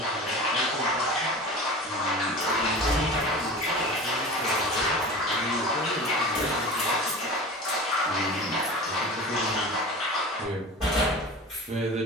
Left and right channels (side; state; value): both; normal; correlation 0.34